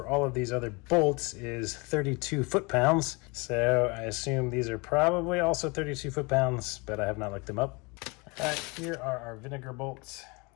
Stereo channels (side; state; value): right; quieter; 28.1 dB